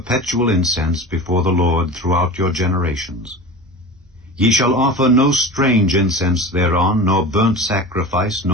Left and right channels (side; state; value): both; normal; correlation 0.32